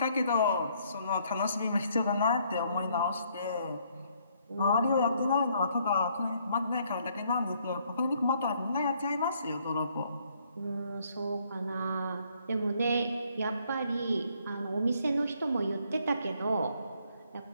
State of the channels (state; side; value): inverted; both; correlation -0.68